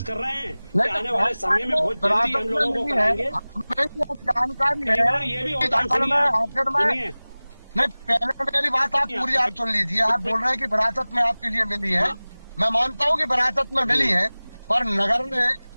कर रहे हैं कि आने वाले समय में बहुत जल्दी हम लोगों को कराएंगे। जानकारी ये भी होता है। नहीं, पहले मेरी बात आप पूरी आप सुन लीजिए। आप बोल रहे हैं कि विरासत में आपके लिए मिली है, मैं मानता हूँ कि विरासत में मिली है, पर नगर में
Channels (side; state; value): both; inverted; correlation -0.99